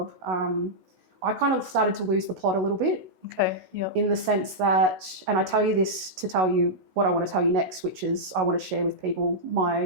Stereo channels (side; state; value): left; late; 16 ms